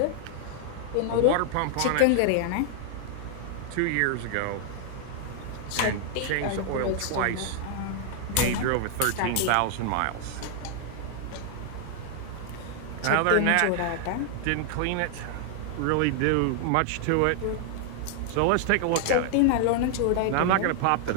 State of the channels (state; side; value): different; both; correlation -0.01